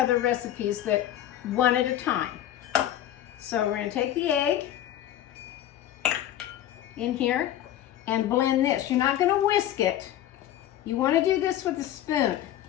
recipes that one at a time. So we're going to take the egg in here and blend this. You're not going to whisk it. You want to do this with a spoon.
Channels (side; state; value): right; quieter; 12.1 dB